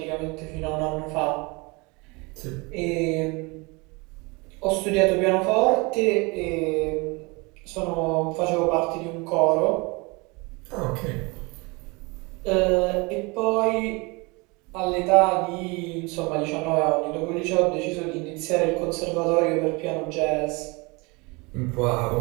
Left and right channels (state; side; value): quieter; left; 27.1 dB